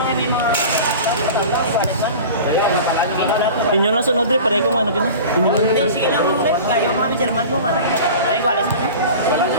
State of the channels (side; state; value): both; inverted; correlation -0.37